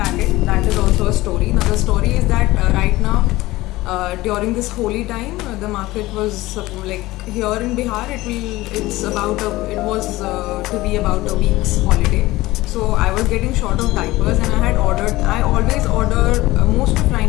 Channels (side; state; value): right; quieter; 18.6 dB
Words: that is also a story. Now the story is that right now during this holy time, the market was like here in Bihar, it was to be about a week's holiday. So I was getting short of diapers and I always order most of